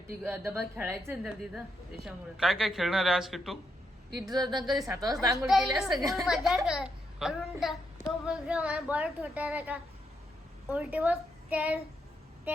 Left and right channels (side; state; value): both; normal; correlation 0.80